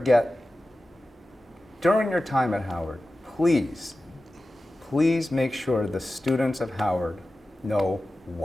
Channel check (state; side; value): normal; both; correlation 0.94